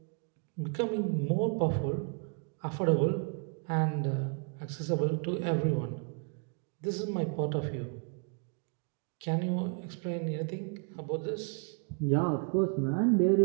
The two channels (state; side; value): quieter; left; 39.4 dB